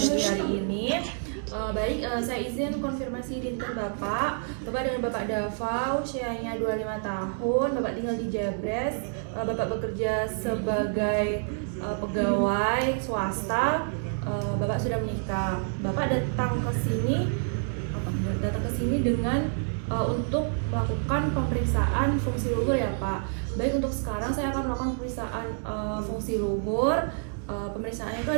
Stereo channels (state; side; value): silent; left; 59 dB below the other